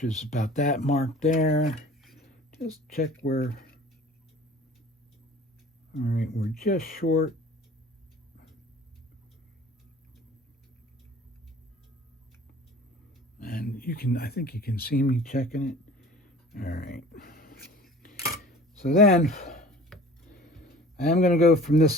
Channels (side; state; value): both; normal; correlation 0.45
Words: is about that mark there. Just check where. All right, we're just short. And I think you can see me checking it. All right. So then I am going to go from this